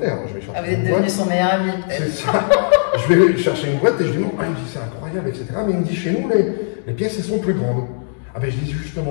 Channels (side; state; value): right; silent; digital silence